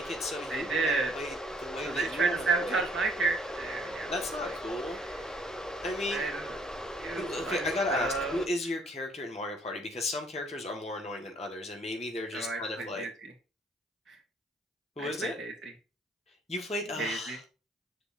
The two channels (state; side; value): normal; both; correlation 0.63